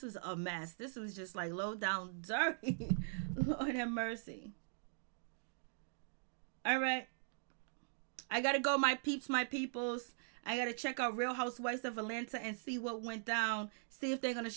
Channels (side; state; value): left; silent; digital silence